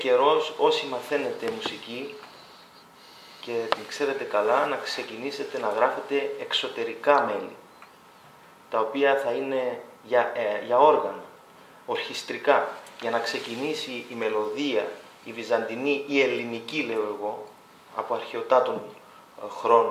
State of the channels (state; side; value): identical; both; correlation 1.00